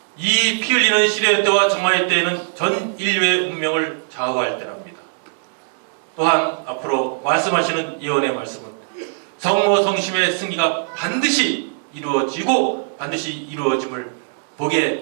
이 피 흘리는 시련의 때와 정화의 때에는 전 인류의 운명을 좌우할 때랍니다. 또한 앞으로 말씀하시는 예언의 말씀은 성모 성심의 승리가 반드시 이루어지고 반드시 이루어짐을 보게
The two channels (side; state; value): left; silent; digital silence